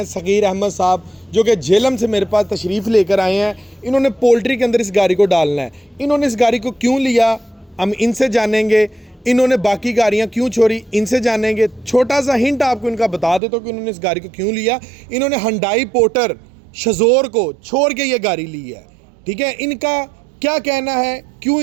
सगीर अहमद साहब, जो कि झेलम से मेरे पास तशरीफ़ लेकर आए हैं। इन्होंने पोल्ट्री के अंदर इस गाड़ी को डालना है। इन्होंने इस गाड़ी को क्यों लिया हम इनसे जानेंगे। इन्होंने बाकी गाड़ियाँ क्यों छोड़ी इनसे जानेंगे। छोटा सा हिंट आपको इनका बता देता हूँ कि इन्होंने इस गाड़ी को क्यों लिया। इन्होंने हुंडई पोर्टर शज़ोर को छोड़ के ये गाड़ी ली है। ठीक है, इनका क्या कहना है क्यों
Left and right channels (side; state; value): left; drops out; at 13.4 s